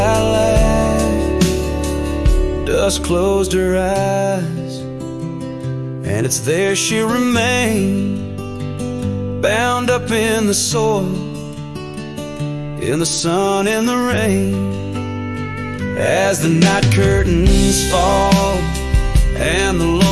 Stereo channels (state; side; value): identical; both; correlation 1.00